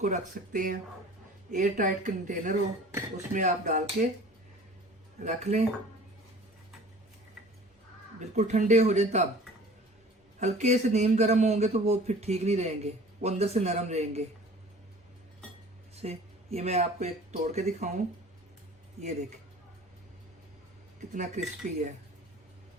रख सकते हैं। एयर टाइट कंटेनर हो, उसमें आप डाल के रख लें, बिल्कुल ठंडे हो जाए। तब हल्के से नीम गर्म होंगे तो वो फिर ठीक नहीं रहेंगे, वो अंदर से नरम रहेंगे। से ये मैं आपको एक तोड़ के दिखाऊं, ये देखें कितना क्रिस्पी है।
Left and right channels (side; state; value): both; normal; correlation 0.45